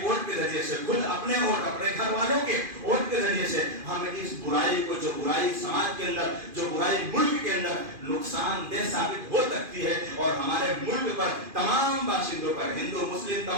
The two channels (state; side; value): late; left; 2.5 ms